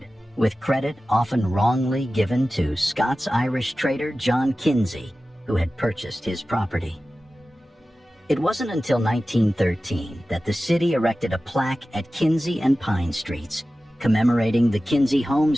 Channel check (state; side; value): normal; both; correlation 0.95